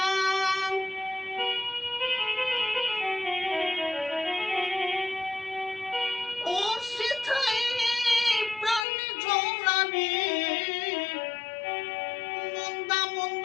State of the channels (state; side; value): drops out; right; at 8.8 s